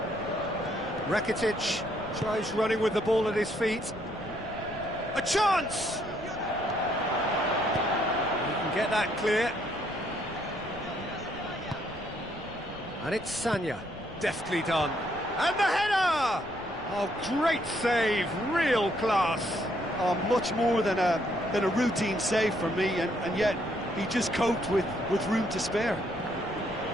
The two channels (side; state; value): left; noise; rumble, 18 dB below the sound